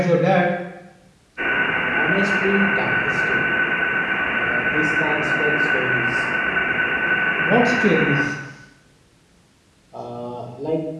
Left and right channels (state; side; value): identical; both; correlation 1.00